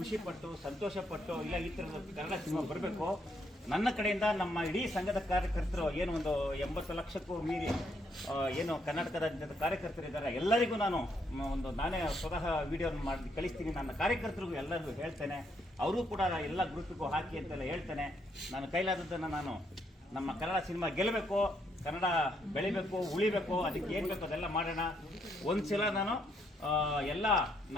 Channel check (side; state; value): both; normal; correlation 0.74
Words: ಪಟ್ಟು ಸಂತೋಷ ಪಟ್ಟು ಇಲ್ಲ ಈ ತರದ ಕನ್ನಡ ಸಿನಿಮಾ ಬರಬೇಕು. ನನ್ನ ಕಡೆಯಿಂದ ನಮ್ಮ ಇಡೀ ಸಂಘದ ಕಾರ್ಯಕರ್ತರು ಏನು ಒಂದು 80 ಲಕ್ಷಕ್ಕೂ ಮೀರಿ ಏನು ಕರ್ನಾಟಕದ ಕಾರ್ಯಕರ್ತರಿದ್ದಾರೆ, ಎಲ್ಲರಿಗೂ ನಾನು ನಾನೇ ಸ್ವತಃ ವಿಡಿಯೋ ಮಾಡಿ ಕಳಿಸ್ತೀನಿ. ನನ್ನ ಕಾರ್ಯಕರ್ತರಿಗೂ ಎಲ್ಲರಿಗೂ ಹೇಳ್ತೇನೆ, ಅವರು ಕೂಡ ಎಲ್ಲ ಗ್ರೂಪಿಗೂ ಹಾಕಿ ಅಂತೆಲ್ಲ ಹೇಳ್ತೇನೆ. ನಾನು ಕೈಲಾದದ್ದನ್ನು ನಾನು ನಮ್ಮ ಕನ್ನಡ ಸಿನಿಮಾ ಗೆಲ್ಲಬೇಕು, ಕನ್ನಡ ಬೆಳಿಬೇಕು, ಉಳಿಬೇಕು, ಅದಕ್ಕೆ ಏನು ಬೇಕು ಅದೆಲ್ಲ ಮಾಡೋಣ. ಒಂದ್ಸಲ ನಾನು ಎಲ್ಲ